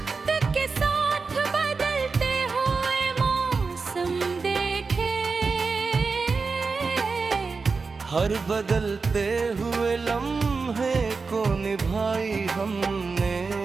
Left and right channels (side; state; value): left; quieter; 4.5 dB